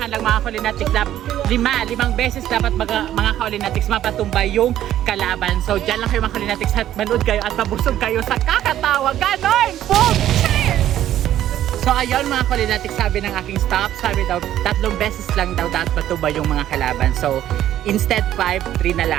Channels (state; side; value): quieter; left; 12.1 dB